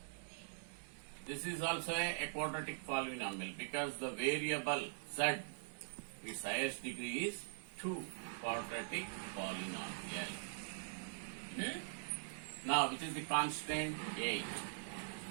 This is also a quadratic polynomial because the variable z, its highest degree is 2. Quadratic polynomial. Now, which is the constant? 8.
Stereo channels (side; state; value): left; silent; digital silence